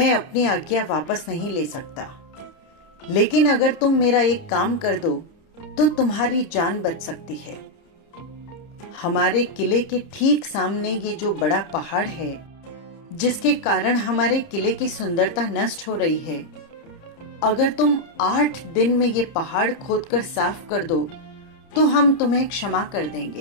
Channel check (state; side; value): late; right; 30 ms